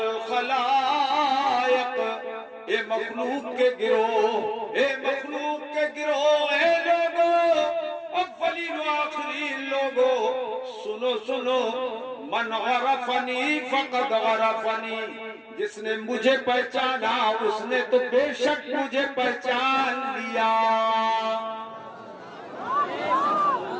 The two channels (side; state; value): both; identical; correlation 1.00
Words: اے مخلوق کے گروہ، اے مخلوق کے گروہ، اے لوگو، اولین و آخرین لوگو، سنو سنو، من غرفنی فقد غرفنی، جس نے مجھے پہچانا اس نے تو بے شک مجھے پہچان لیا۔